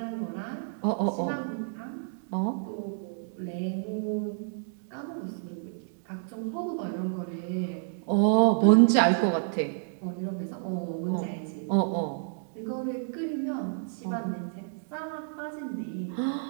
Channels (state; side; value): silent; left; digital silence